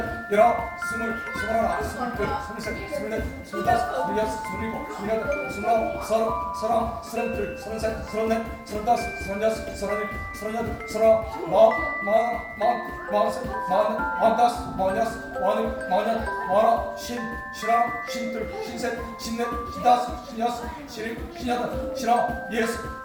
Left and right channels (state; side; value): identical; both; correlation 1.00